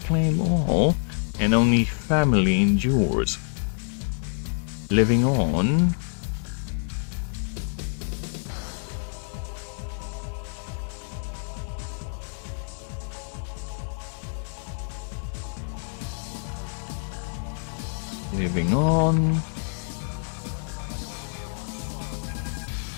claim all, and only family endures. Living on,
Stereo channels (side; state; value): right; silent; digital silence